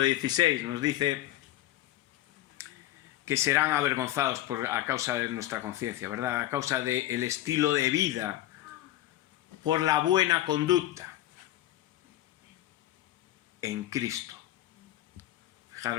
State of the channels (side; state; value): right; quieter; 14.4 dB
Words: 16 nos dice que serán avergonzados a causa de nuestra conciencia, ¿verdad? A causa del estilo de vida, por la buena conducta en Cristo.